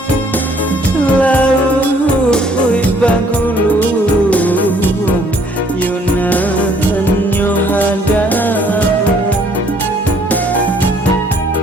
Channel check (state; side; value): normal; both; correlation 0.62